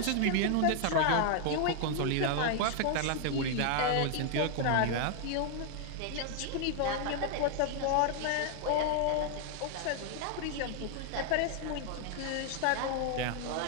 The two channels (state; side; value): different; both; correlation 0.00